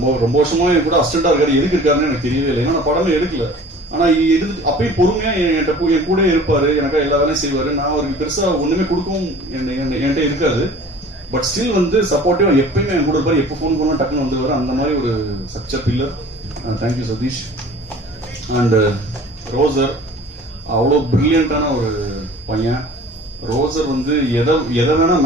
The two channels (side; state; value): both; normal; correlation 0.45